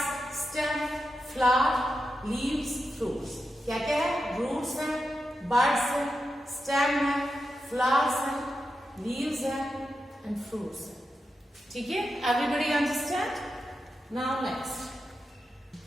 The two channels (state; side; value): normal; both; correlation 0.89